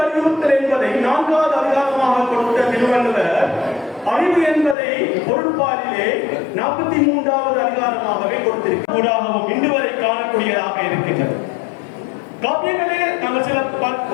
என்பதை 4வது அதிகாரமாக கொடுத்த திருவள்ளுவர் அறிவு என்பதை பொருட்பாலிலே 43வது அதிகாரமாகவே கொடுத்திருக்கிறாகவும் இன்று வரை காணக்கூடியதாக இருக்கின்றது. காப்பியங்களே நாங்கள் சில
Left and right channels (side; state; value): right; drops out; at 4.8 s